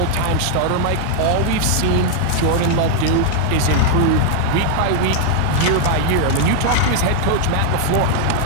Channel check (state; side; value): different; both; correlation 0.00